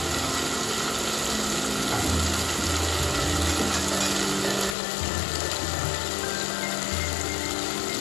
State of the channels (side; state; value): right; drops out; at 4.8 s